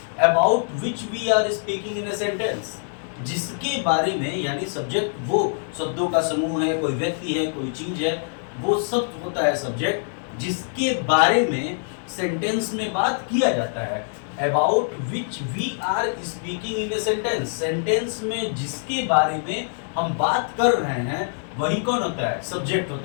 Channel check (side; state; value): right; silent; digital silence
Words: about which we are speaking in a sentence, जिसके बारे में, यानी सब्जेक्ट वो शब्दों का समूह है, कोई व्यक्ति है, कोई चीज है, वो सब होता है सब्जेक्ट, जिसके बारे में सेंटेंस में बात किया जाता है। About which we are speaking in a sentence, sentence में जिसके बारे में हम बात कर रहे हैं वही कौन होता है? सब्जेक्ट